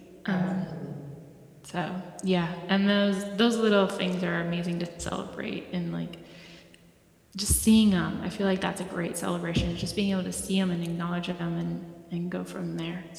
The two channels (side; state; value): both; identical; correlation 1.00